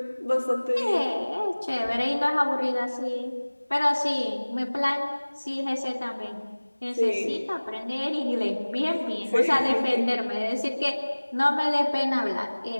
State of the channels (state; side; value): inverted; both; correlation -1.00